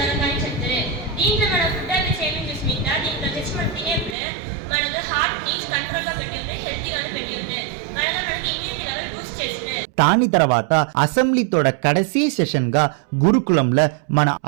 చెప్తారు. దీంట్లో మన ఫుడ్ హ్యాబిట్స్ ఏమేమి చూసిమింట దీంట్లో తెచ్చి మనం తినేప్పుడు మనకు హార్ట్ని కంట్రోల్లో పెట్టి ఉంటే, హెల్తీగానే పెట్టి ఉంటే, మనకి ఇమ్యూనిటీ లెవెల్ బూస్ట్ చేస్తుంది. దాని తర్వాత అసెంబ్లీతోడ కడసీ సెషన్ గా గురుకులంలో మన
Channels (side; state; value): left; drops out; at 4.2 s